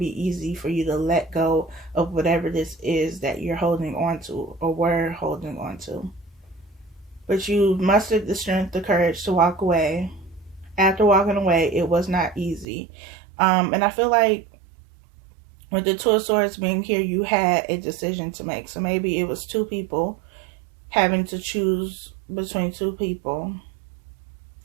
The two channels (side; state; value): left; drops out; at 12.7 s